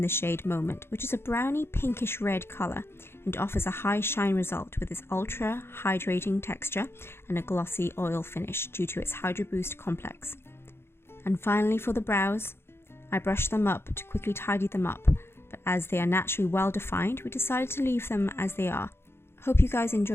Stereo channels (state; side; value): late; right; 0.12 ms